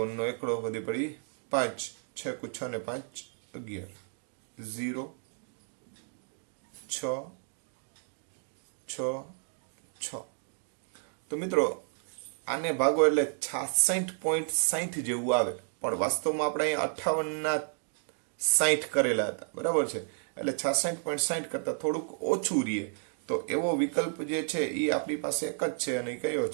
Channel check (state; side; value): silent; left; 57 dB below the other